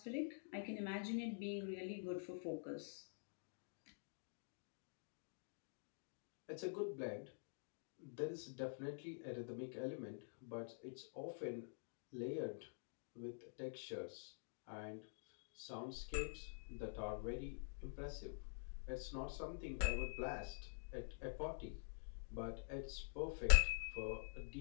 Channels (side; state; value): right; silent; digital silence